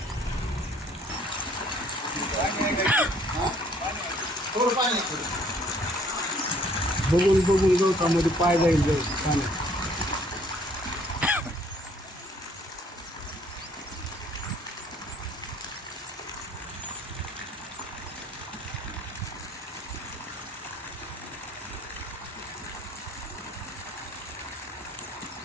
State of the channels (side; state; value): both; normal; correlation 0.60